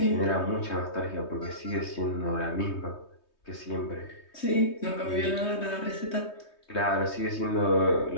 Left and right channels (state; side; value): late; right; 3.2 ms